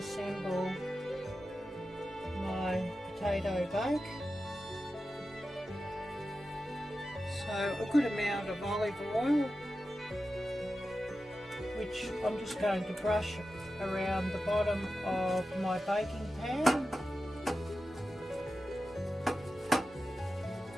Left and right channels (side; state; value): both; normal; correlation 0.92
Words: my potato bake. So a good amount of olive oil, which I'm just going to brush around the bottom of my baking pan.